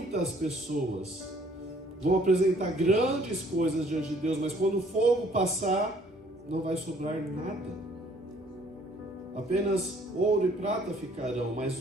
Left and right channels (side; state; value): both; normal; correlation 0.60